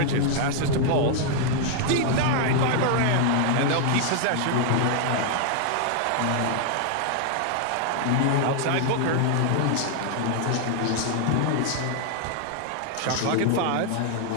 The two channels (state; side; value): different; both; correlation 0.00